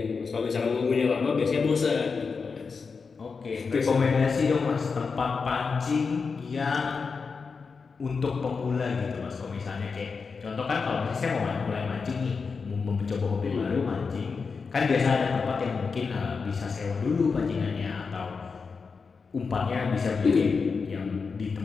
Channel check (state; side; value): quieter; right; 5.1 dB